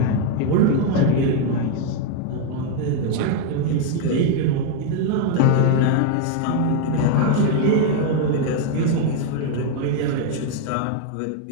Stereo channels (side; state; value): both; different; correlation 0.00